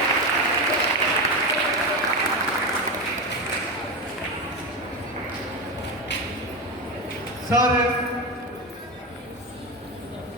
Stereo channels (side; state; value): both; normal; correlation 0.16